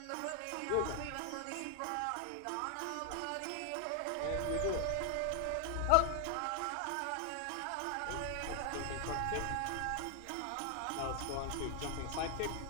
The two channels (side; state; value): both; different; correlation 0.00